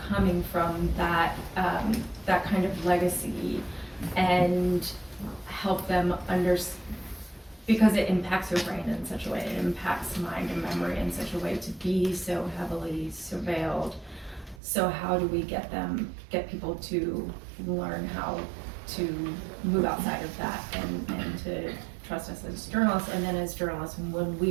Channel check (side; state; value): left; drops out; at 14.6 s